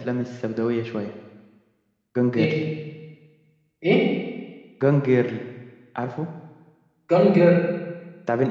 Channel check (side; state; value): both; identical; correlation 1.00